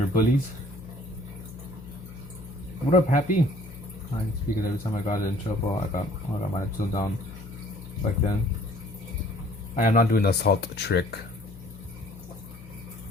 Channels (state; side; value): normal; both; correlation 0.56